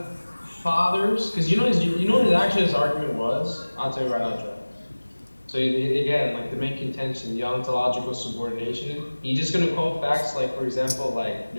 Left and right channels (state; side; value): inverted; both; correlation -1.00